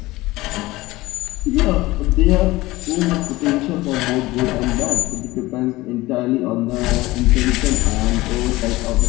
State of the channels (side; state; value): right; quieter; 19.3 dB